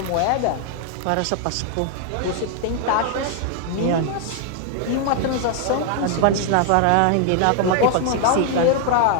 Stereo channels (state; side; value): different; both; correlation 0.00